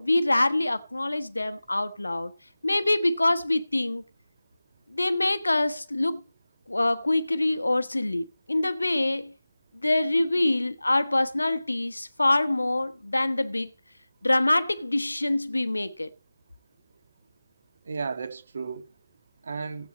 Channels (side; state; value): both; inverted; correlation -0.98